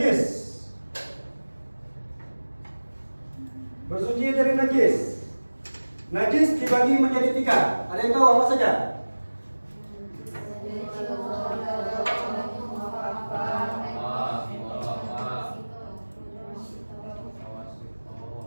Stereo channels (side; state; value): both; inverted; correlation -1.00